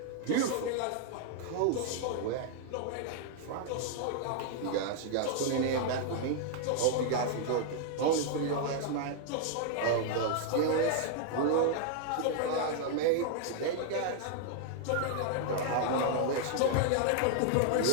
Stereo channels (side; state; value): both; different; correlation 0.00